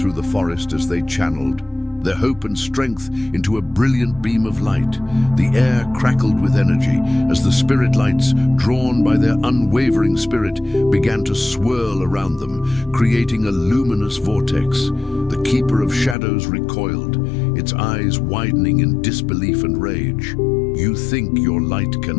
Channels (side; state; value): right; drops out; at 16.2 s